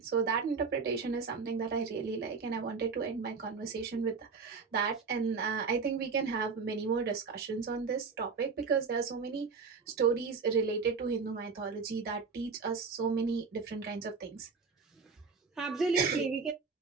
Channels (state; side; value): quieter; left; 5.1 dB